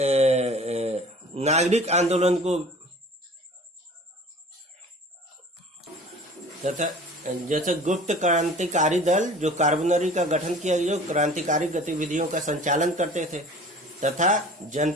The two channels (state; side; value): normal; both; correlation 0.45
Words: नागरिक आंदोलन को तथा जैसे गुप्त क्रांतिकारी दल जो कार्बोनरी का गठन किया गया, जो क्रांतिकारी गतिविधियों का संचालन करते थे, तथा